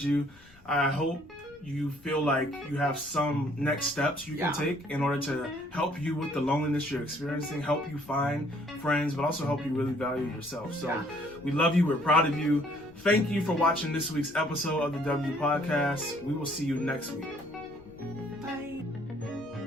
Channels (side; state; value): left; noise; rumble, 26 dB below the sound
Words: you. I hope you feel like you have some next steps you can take in order to help you with the loneliness you're experiencing, help you find friends, but also help you really value yourself. So we love you. We're proud of you. Thank you for watching this week's episode of the W Podcast. We will see you next week. Bye.